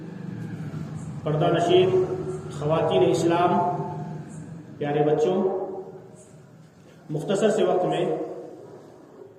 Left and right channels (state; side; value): identical; both; correlation 1.00